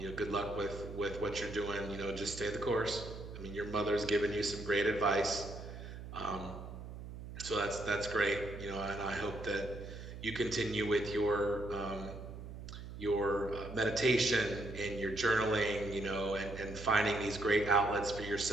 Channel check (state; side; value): noise; right; hum, 11 dB below the sound